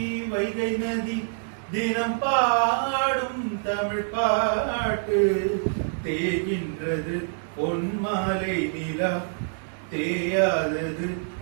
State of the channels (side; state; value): left; silent; digital silence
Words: வைகை நதி தினம் பாடும் தமிழ் பாட்டு. தேகின்றது பொன்மாலை நிலா, தேயாதது